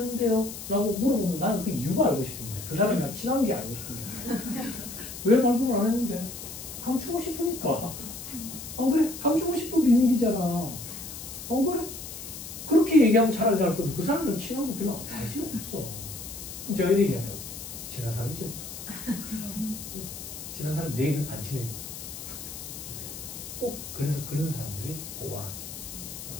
라고 물어보면 나는 그 이유가 알고 싶은 거야. 그 사람이랑 친한 게 알고 싶은 거야. 왜 발급을 안 했는데? 감추고 싶으니까. 안 그래? 감추고 싶은 비밀이잖아. 안 그래? 그렇게 얘기하면 차라리 나을 건데 그 사람이랑 친한 거 별로 관심 없어. 그럼 제가 이렇게 얘기한다고. 친한 사람이 제일 무섭다. 친한 사람 내일은 안 친해진다. 꼭 그래서 그런 사람들이 보완하지.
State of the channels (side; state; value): left; noise; hiss, 10 dB below the sound